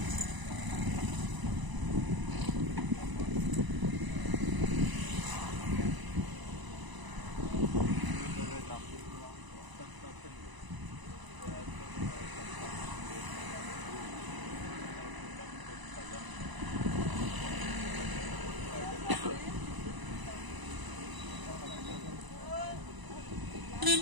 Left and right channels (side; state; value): left; late; 1.0 ms